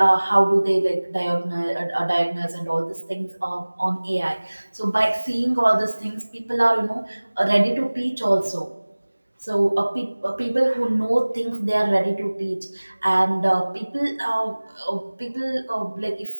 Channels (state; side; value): inverted; both; correlation -1.00